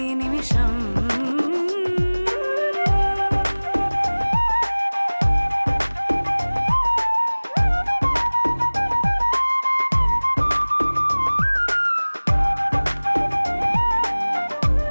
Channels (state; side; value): inverted; both; correlation -1.00